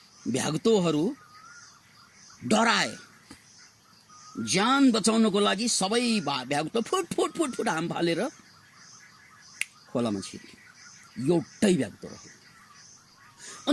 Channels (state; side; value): identical; both; correlation 1.00